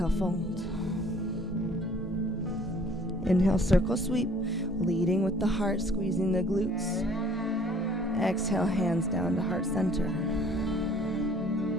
fold. Inhale, circle sweep, leading with the heart, squeezing the glutes. Exhale, hands down to heart center.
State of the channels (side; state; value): both; normal; correlation 0.55